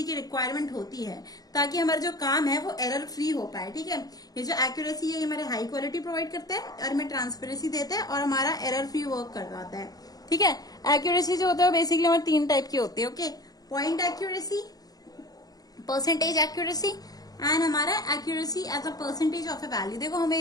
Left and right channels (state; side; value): late; right; 0.18 ms